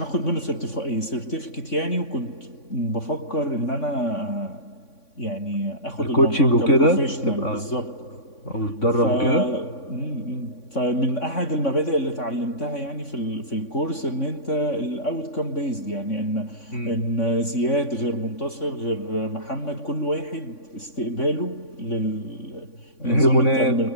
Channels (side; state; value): right; late; 3.6 ms